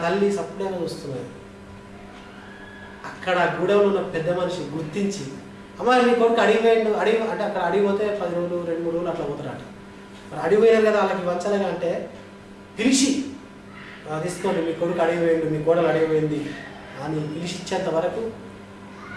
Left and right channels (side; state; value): both; identical; correlation 1.00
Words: తల్లి సప్లైగా చూస్తున్నది. అక్కడ గూడెంలో ఉన్న పెద్ద మనిషి గుర్తించి, అమ్మ మీ కొడుకు అడిగిపోయిండు, అంటే అక్కడ అడిగిపోతే 10 రోజులు 2-3 రోజులు అట్లా పోతారట. మరి అడిగిపోయారు కదా వాళ్ళకి వంచలేగా అంటే పిలిచి తీసుకోండి, మీ కొడుకు అడిగిపోయిండు, మీ కోడలు అడిగిపోయింది అని పిలిచి ఇచ్చేంత వరకు